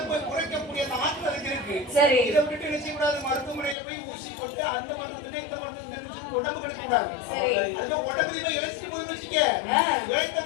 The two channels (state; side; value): drops out; right; at 3.8 s